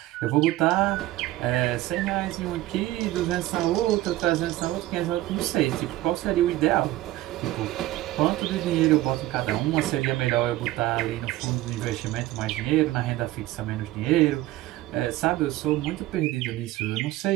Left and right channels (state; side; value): quieter; left; 16.2 dB